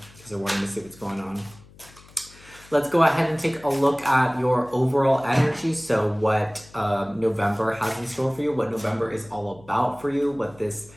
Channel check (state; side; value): noise; left; hum, 24 dB below the sound